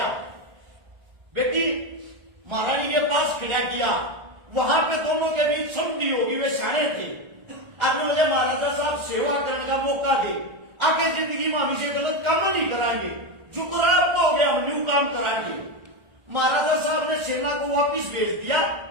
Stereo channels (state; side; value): late; left; 1.4 ms